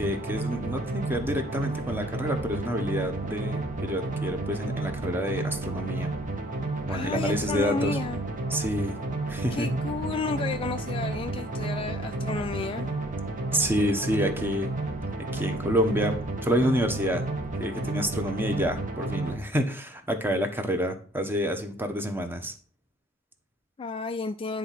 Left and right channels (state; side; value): normal; both; correlation 0.58